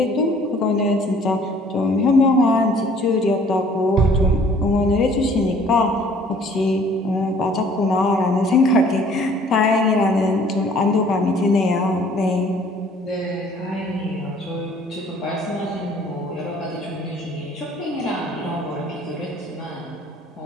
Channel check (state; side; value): normal; both; correlation 0.56